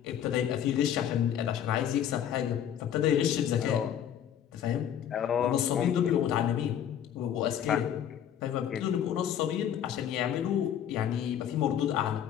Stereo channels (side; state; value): right; quieter; 9.7 dB